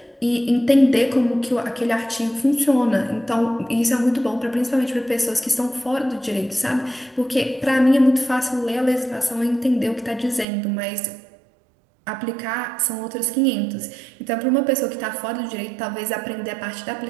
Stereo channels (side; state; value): left; drops out; at 10.5 s